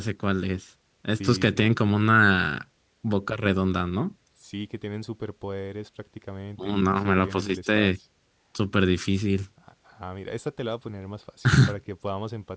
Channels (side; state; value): both; identical; correlation 1.00